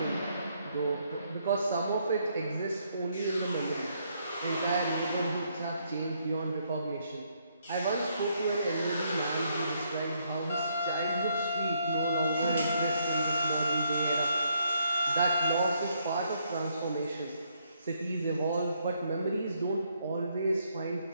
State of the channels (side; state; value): both; inverted; correlation -0.72